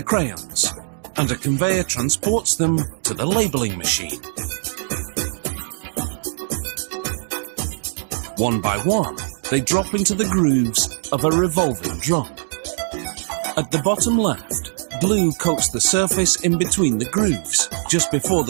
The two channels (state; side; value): silent; left; digital silence